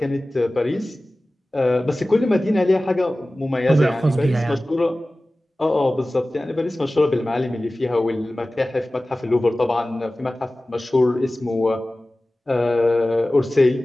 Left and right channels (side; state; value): both; normal; correlation 0.97